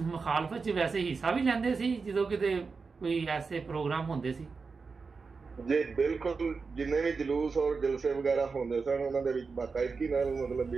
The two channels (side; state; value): left; quieter; 4.7 dB